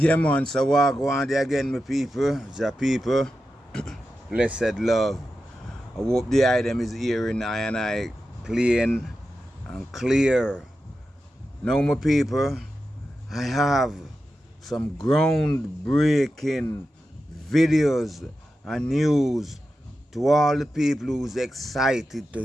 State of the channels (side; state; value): both; normal; correlation 0.91